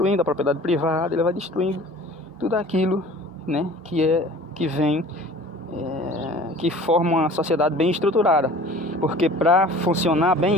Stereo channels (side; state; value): both; normal; correlation 0.45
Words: a propriedade privada, ele vai destruindo tudo aquilo, né, que forma uma sociedade bem estruturada. Porque para funcionar